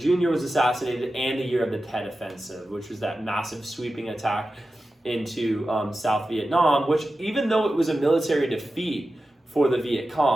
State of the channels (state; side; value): normal; both; correlation 0.93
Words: was assassinated, and the year of the Tet Offensive, which was that massive sweeping attack into South Vietnam, which even though it was a military defeat for the Viet